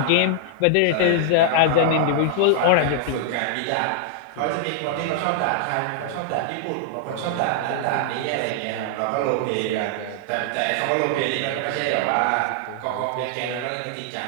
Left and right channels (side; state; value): both; different; correlation -0.01